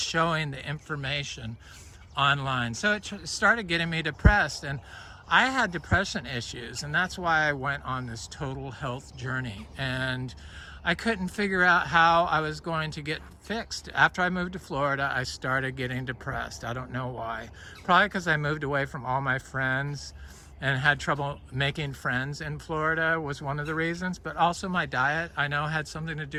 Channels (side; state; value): both; identical; correlation 1.00